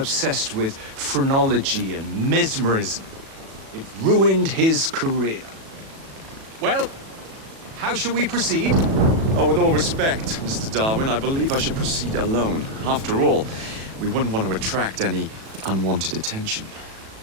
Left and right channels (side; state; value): left; late; 37 ms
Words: with phrenology and mesmerism. It ruined his career. Well, how shall we proceed? Oh, with all respect, Mr. Darwin, I believe I should proceed alone. After all, we wouldn't want to attract any unwanted attention.